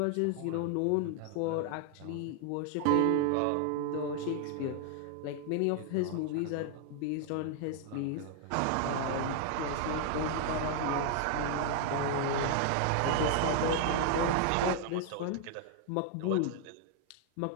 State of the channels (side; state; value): both; different; correlation 0.00